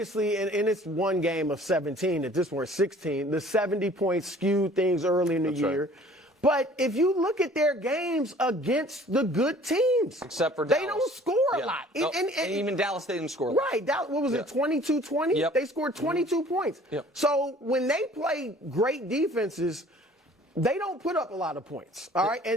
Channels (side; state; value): both; normal; correlation 0.51